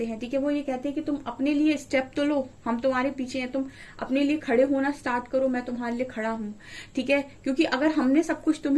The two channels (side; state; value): both; identical; correlation 1.00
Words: हैं, ठीक है। वो ये कहते हैं कि तुम अपने लिए स्टेप तो लो, हम तुम्हारे पीछे हैं, तुम अपने लिए खड़े होना स्टार्ट करो, मैं तुम्हारे लिए खड़ा हूं, ठीक है। क्योंकि अगर हमने सब कुछ